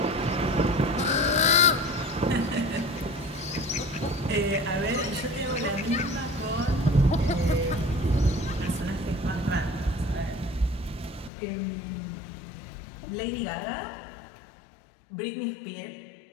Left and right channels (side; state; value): right; drops out; at 11.3 s